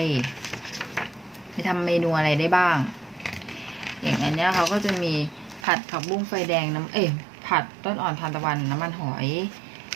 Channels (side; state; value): left; drops out; at 5.7 s